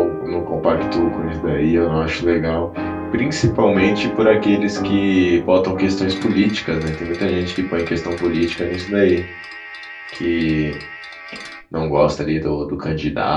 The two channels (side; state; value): both; identical; correlation 1.00